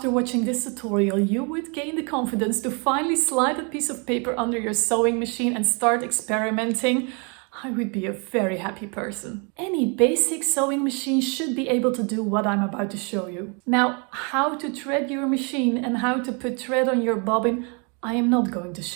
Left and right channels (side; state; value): left; quieter; 34.6 dB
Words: watching this tutorial you would gain the confidence to finally slide a piece of paper under your sewing machine and start experimenting, I would be a very happy person. Any basic sewing machine should be able to do what I'm about to show you. Now, how to thread your machine and how to put thread on your bobbin, I am not going to